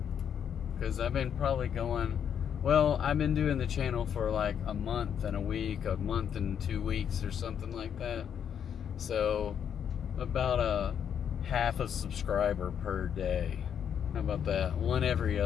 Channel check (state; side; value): quieter; right; 8.4 dB